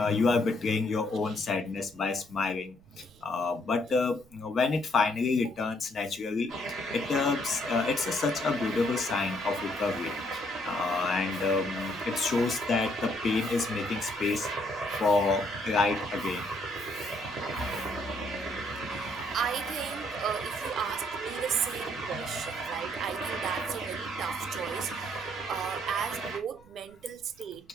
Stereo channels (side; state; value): right; noise; rumble, 27 dB below the sound